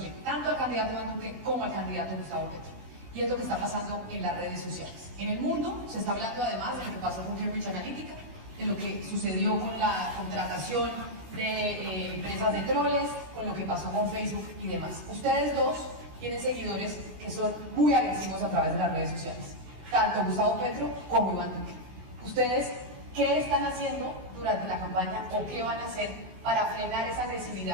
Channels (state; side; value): late; left; 16 ms